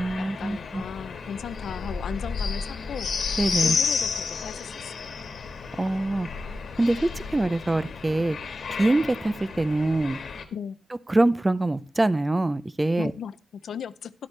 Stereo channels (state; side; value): normal; both; correlation 0.92